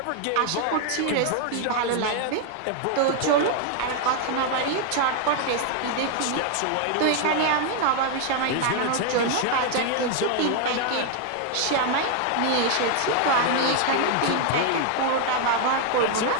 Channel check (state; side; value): different; both; correlation 0.00